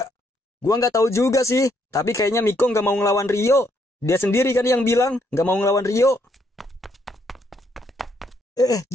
Gua nggak tahu juga sih, tapi kayaknya Miko nggak mau ngelawan Rio. Dia sendiri kan yang bilang nggak mau ngelawan Rio.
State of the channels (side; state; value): both; normal; correlation 0.72